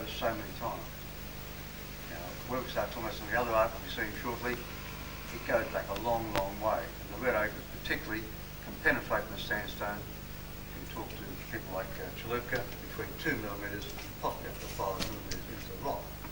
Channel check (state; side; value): identical; both; correlation 1.00